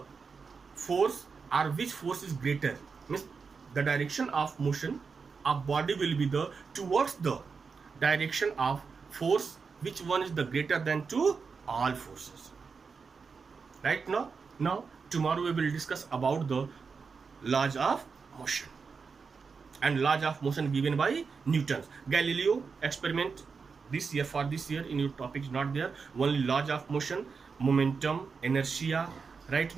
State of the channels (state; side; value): quieter; left; 5.2 dB